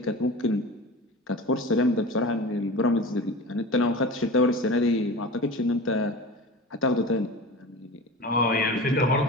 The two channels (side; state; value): both; normal; correlation 0.32